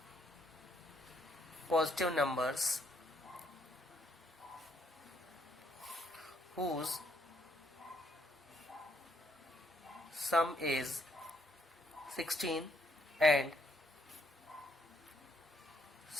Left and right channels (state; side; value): normal; both; correlation 0.71